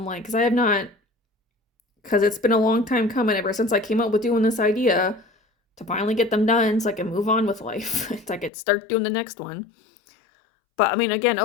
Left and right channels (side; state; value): right; drops out; at 8.5 s